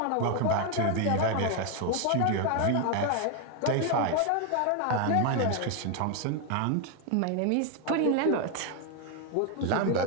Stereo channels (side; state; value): both; different; correlation 0.01